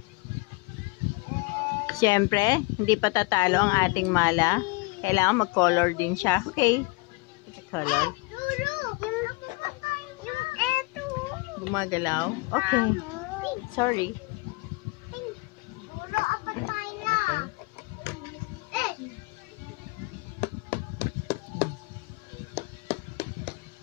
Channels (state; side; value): quieter; right; 25.9 dB